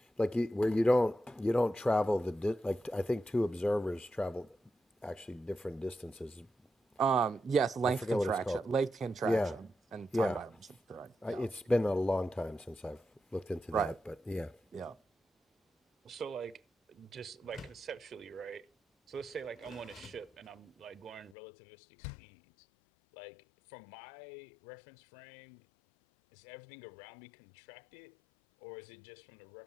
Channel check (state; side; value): drops out; right; at 21.4 s